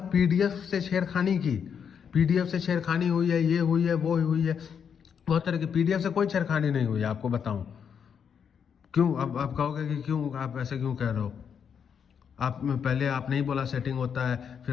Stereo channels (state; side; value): quieter; right; 7.3 dB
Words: पीडीएफ से छेड़खानी की, पीडीएफ से छेड़खानी हुई है, ये हुई है, वो हुई है, बहुत तरह की। पीडीएफ से कोई छेड़खानी नहीं हुई है, आपको बताऊं क्यों। अब आप कहोगे कि क्यों, आप ऐसे क्यों कह रहे हो? आप पहले आप नहीं बोला सेटिंग होता है,